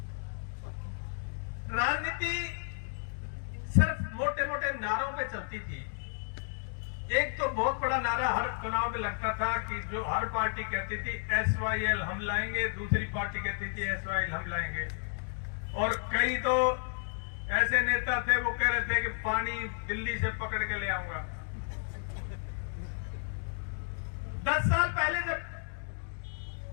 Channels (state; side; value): silent; right; 56 dB below the other